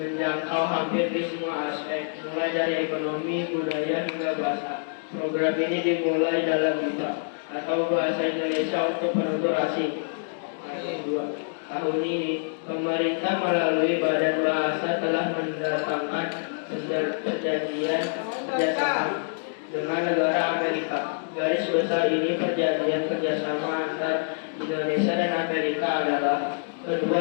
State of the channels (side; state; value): right; silent; digital silence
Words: hampir di semua aspek, mulai dari ekonomi, budaya, hingga bahasa. Program ini dimulai dalam BIPA atau Bahasa Indonesia untuk Penutur Asing. Tahun ini, pemerintah melalui Badan Bahasa telah mendatangkan perjanjian kerjasama dengan negara Amerika. Garis besar ini perjanjian kerjasama antar Indonesia dan Amerika adalah